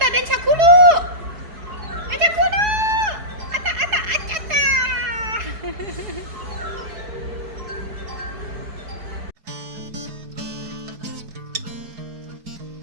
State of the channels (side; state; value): left; late; 4.7 ms